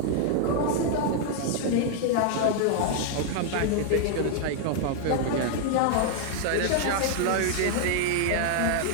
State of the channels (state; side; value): different; both; correlation 0.00